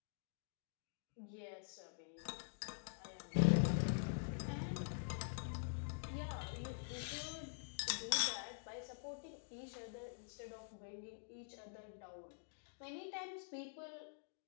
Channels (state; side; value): silent; right; digital silence